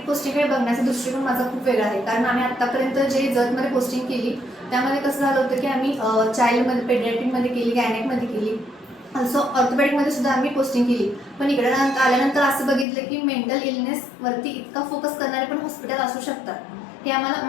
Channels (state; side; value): drops out; right; at 12.9 s